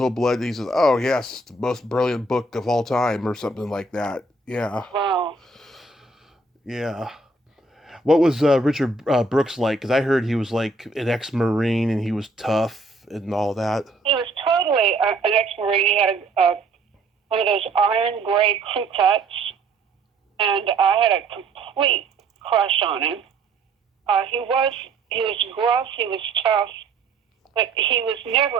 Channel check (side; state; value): left; quieter; 3.3 dB